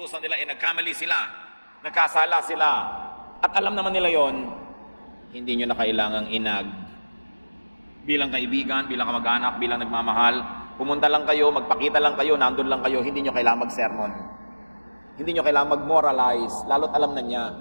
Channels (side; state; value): both; inverted; correlation -1.00